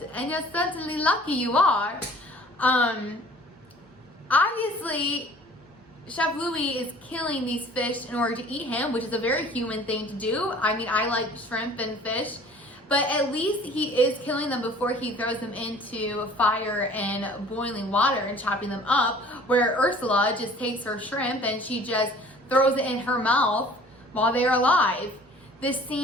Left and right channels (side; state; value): both; normal; correlation 0.50